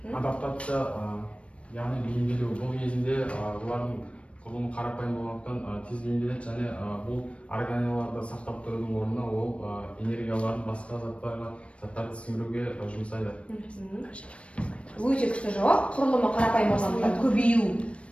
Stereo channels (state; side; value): late; right; 0.061 ms